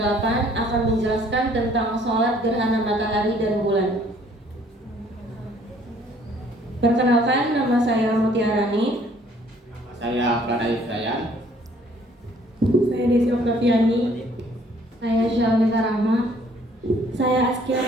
akan menjelaskan tentang sholat gerhana matahari dan bulan. Perkenalkan, nama saya Mutiarani. Saya Pradai Hidayat. Saya Desi Oktaviani. Saya Syalmita Rahma. Saya Askia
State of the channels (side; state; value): both; normal; correlation 0.60